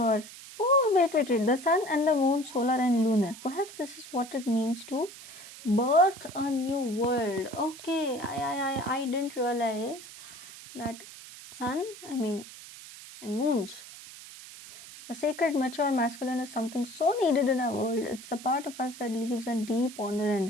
Oh, wait. The sun and the moon, solar and lunar. Perhaps this is what it means to birth a new world. Okay, I didn't realize that sun, and moons. The sacred, mature masculine is something so needed in our world. It's the part of us that leaves a deep honor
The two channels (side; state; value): right; noise; hiss, 16 dB below the sound